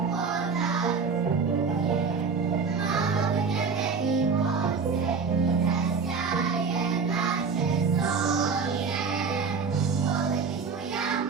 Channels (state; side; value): quieter; left; 5.3 dB